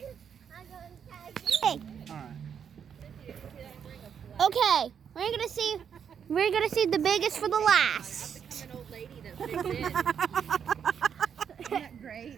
Hey. Alright. Okay. We're gonna see the biggest for the last. I'm an old lady that fits in. Isn't that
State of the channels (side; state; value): left; quieter; 7.7 dB